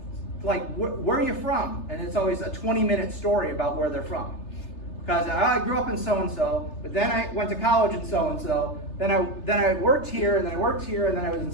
Like, where are you from? And it's always a 20-minute story about where they're from. Because I grew up in so-and-so, but then I went to college in so-and-so, then I worked here, and then I worked here, and then I was in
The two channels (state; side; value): late; right; 3.3 ms